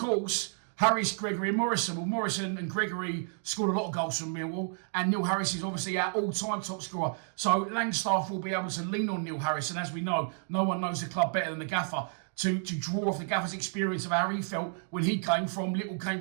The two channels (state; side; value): silent; left; 57 dB below the other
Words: Harris, Gregory and Morrison. Well, Morrison and Gregory scored a lot of goals from Millwall, and Neil Harris is obviously our all-time top scorer. So Langstaff will be able to lean on Neil Harris, and as we know, no one knows the club better than the gaffer, to draw off the gaffer's experience of how he felt when he came from Little